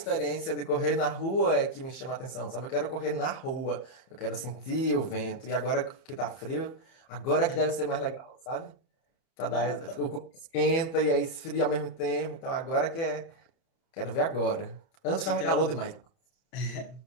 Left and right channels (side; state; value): right; late; 31 ms